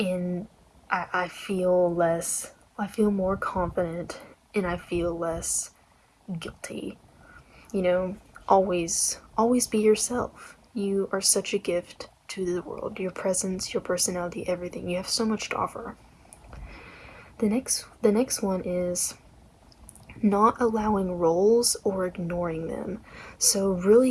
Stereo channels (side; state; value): both; identical; correlation 1.00